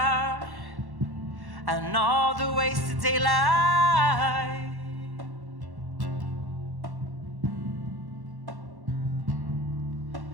and all the wasted daylight,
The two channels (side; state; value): left; late; 1.1 ms